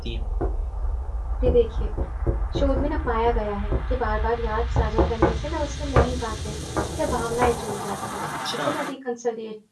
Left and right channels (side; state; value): both; identical; correlation 1.00